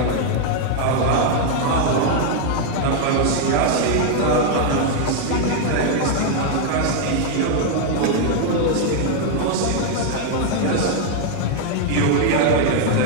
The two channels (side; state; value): both; different; correlation 0.00